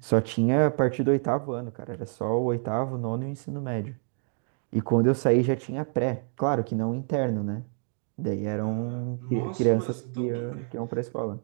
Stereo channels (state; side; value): silent; left; 56 dB below the other